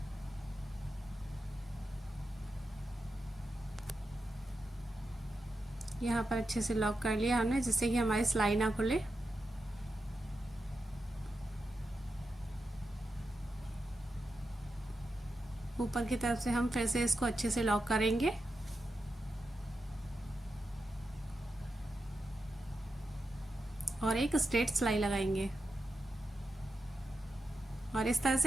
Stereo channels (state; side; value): normal; both; correlation 0.89